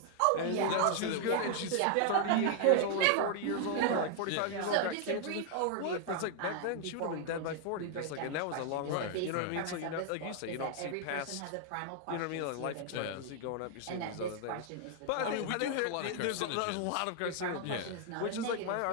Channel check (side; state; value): both; different; correlation 0.00